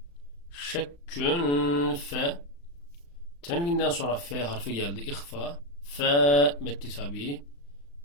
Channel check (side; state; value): right; late; 35 ms